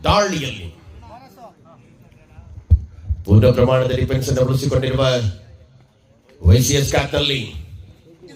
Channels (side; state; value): both; identical; correlation 1.00